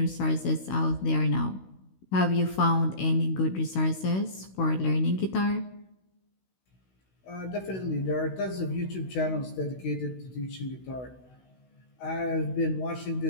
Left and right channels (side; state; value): right; late; 16 ms